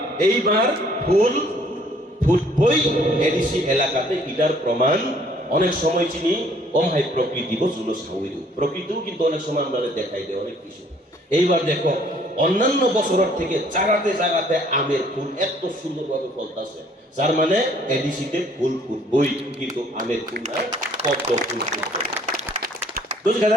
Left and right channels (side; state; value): both; normal; correlation 0.60